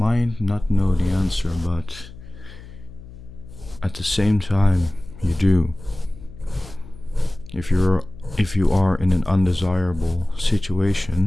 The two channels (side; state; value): left; noise; hum, 17 dB below the sound